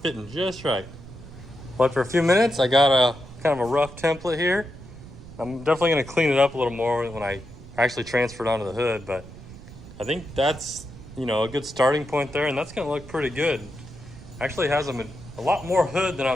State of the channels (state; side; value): noise; right; rumble, 16 dB below the sound